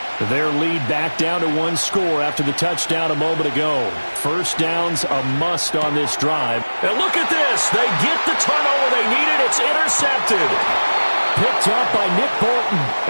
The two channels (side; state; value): both; inverted; correlation -1.00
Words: Their lead back down to 1 score after the touchdown a moment ago. 1st down's a must on this drive. And look at this. They get the turnover they needed. It's intercepted. Picked up by Nick Bolton.